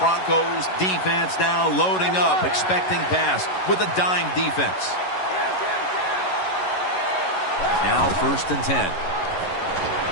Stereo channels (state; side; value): late; right; 11 ms